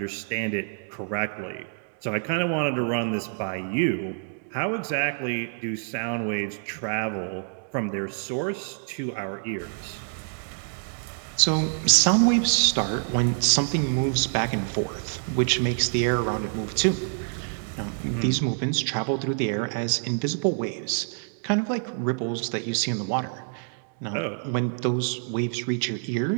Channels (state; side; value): silent; left; 60 dB below the other